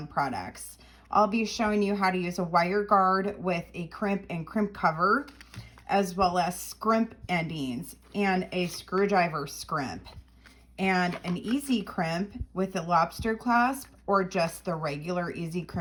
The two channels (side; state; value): both; identical; correlation 1.00